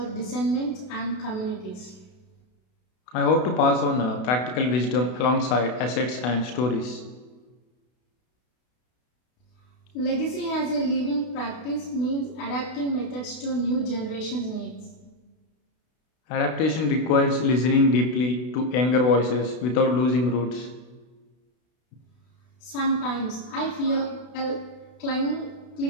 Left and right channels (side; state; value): right; late; 32 ms